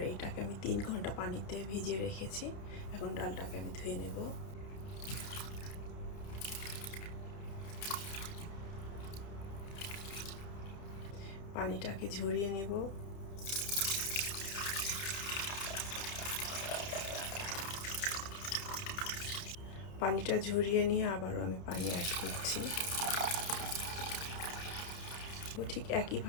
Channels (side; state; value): right; late; 30 ms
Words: এইটাকে আমি 3 ঘন্টা পানিতে ভিজিয়ে রেখেছি। এখন ডালটাকে আমি ধুয়ে নেব। পানিটাকে ঝরিয়ে নেব। পানিটা ঝরিয়ে নিয়ে আবারও আমি পানি অ্যাড করছি। ঠিক